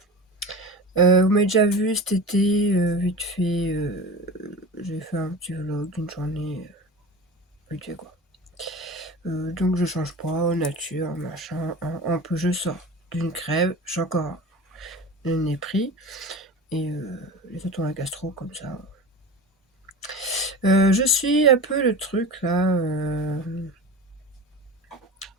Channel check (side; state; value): both; normal; correlation 0.31